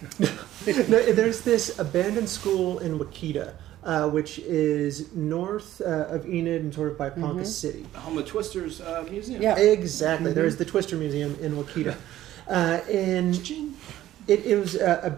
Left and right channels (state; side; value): quieter; left; 13.7 dB